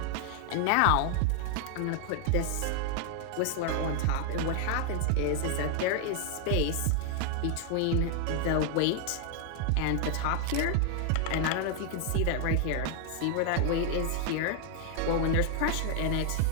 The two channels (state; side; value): different; both; correlation 0.00